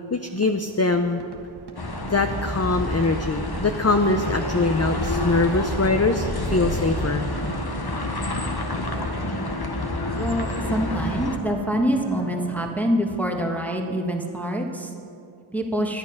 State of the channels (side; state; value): both; normal; correlation 0.33